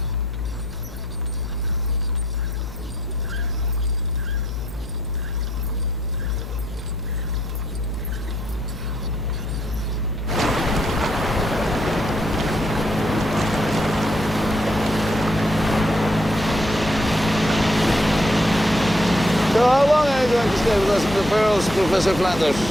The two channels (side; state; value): left; noise; hum, 11 dB below the sound